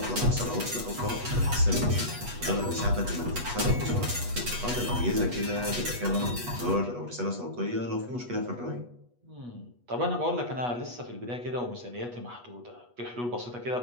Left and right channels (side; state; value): left; late; 8.2 ms